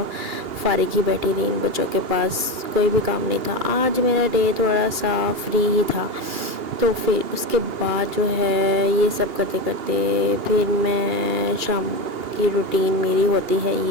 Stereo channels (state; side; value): late; left; 2.8 ms